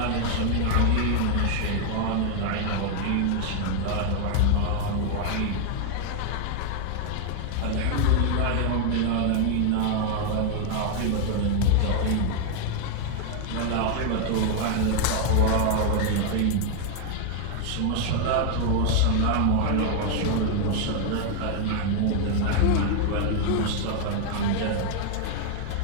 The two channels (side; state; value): both; different; correlation 0.00